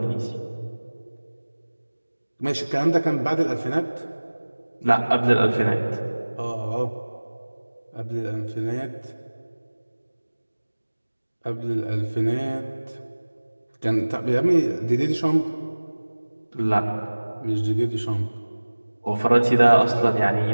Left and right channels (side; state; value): both; inverted; correlation -1.00